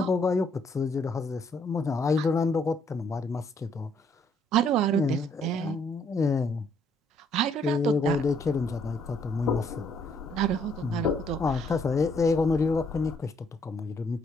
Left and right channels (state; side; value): normal; both; correlation 0.68